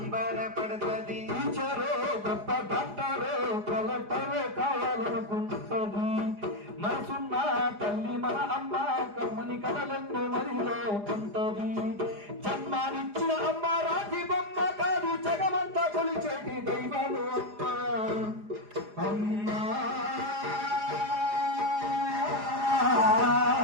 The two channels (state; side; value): late; left; 4.9 ms